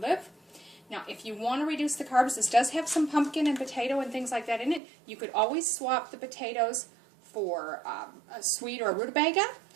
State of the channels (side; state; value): left; drops out; at 4.8 s